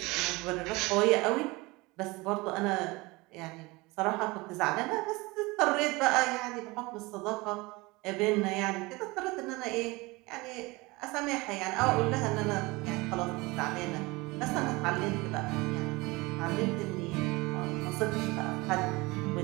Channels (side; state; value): left; quieter; 23.3 dB